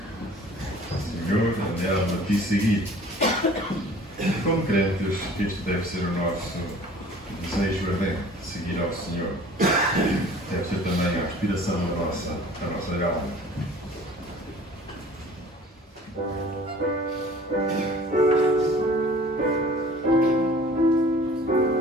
Senhor, anela-te seguir. Como crentes, este deve ser o nosso desejo ardente, seguir ao Senhor. Deve ser também a aspiração da nossa alma.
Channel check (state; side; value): normal; both; correlation 0.48